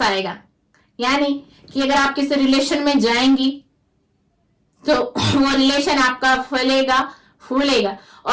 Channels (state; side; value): identical; both; correlation 1.00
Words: आएगा, यानी कि अगर आप किसी रिलेशन में जाएंगी तो वो रिलेशन आपका फलेगा फूलेगा।